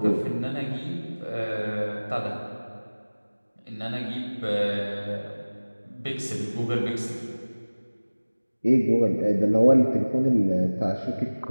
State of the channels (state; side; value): inverted; both; correlation -1.00